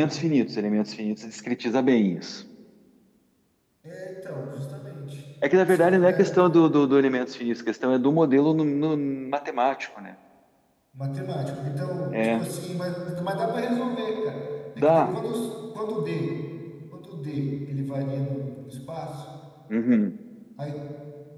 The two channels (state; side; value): identical; both; correlation 1.00